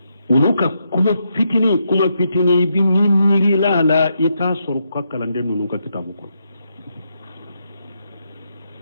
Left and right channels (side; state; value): both; inverted; correlation -0.80